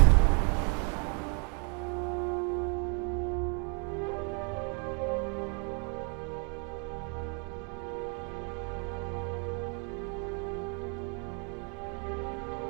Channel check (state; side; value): quieter; left; 37.8 dB